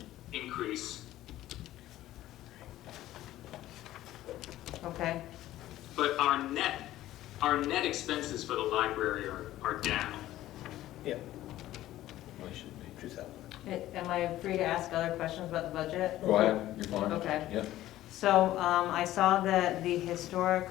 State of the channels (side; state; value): right; quieter; 14.5 dB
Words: increase. Okay, But our net expenses for the library are down. Yeah. am I free to ask other questions about the budget? Go ahead, you're fine. Okay. Yeah. So I saw that the historic,